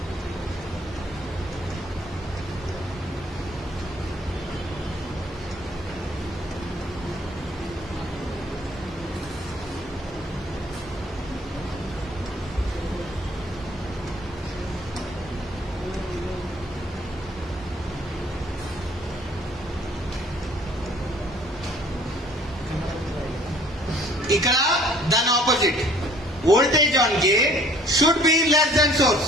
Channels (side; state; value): both; normal; correlation 0.56